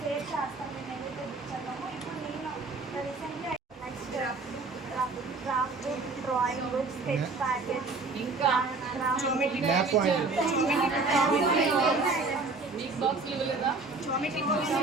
చేస్తాం. మేము ఏదైతే బుక్ చదివామో ఇప్పుడు నేను రీసెంట్గా next craft book, drawing book, sketch packet, ఇంకా జామెట్రీ మీకు బాక్స్లు ఇవ్వలేదా?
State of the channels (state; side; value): quieter; left; 3.7 dB